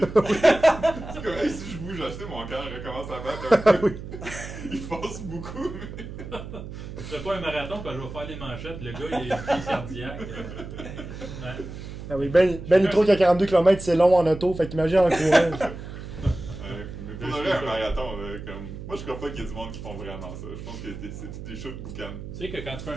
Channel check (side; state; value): right; noise; hum, 10 dB below the sound